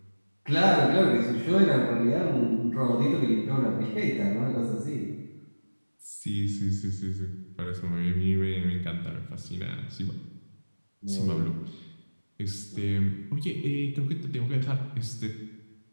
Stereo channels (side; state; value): both; inverted; correlation -1.00